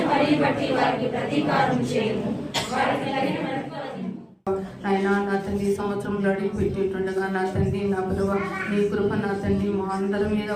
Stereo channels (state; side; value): identical; both; correlation 1.00